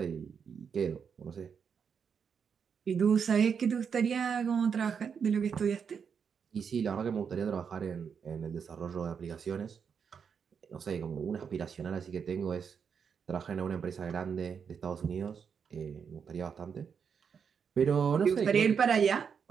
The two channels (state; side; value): quieter; left; 6.7 dB